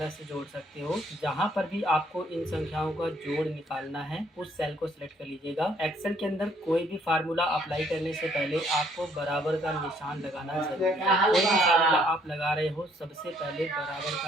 से जोड़ सकते हो। जहां पर भी आपको इन संख्याओं का जोड़ निकालना है उस सेल को सिलेक्ट कर लीजिएगा। एक्सेल के अंदर कोई भी फार्मूला अप्लाई करने से पहले आपको बराबर का निशान लगाना जरूरी है। कोई भी फार्मूला आप लगा रहे हो, सबसे पहले बराबर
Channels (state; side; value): normal; both; correlation 0.65